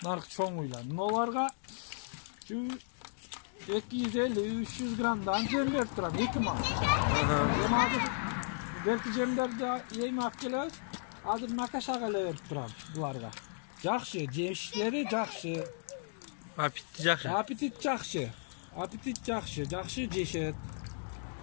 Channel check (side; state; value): right; silent; digital silence